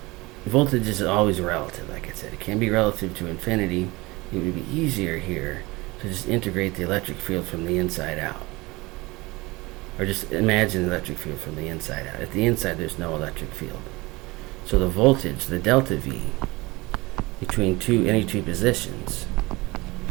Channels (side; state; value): left; quieter; 22.5 dB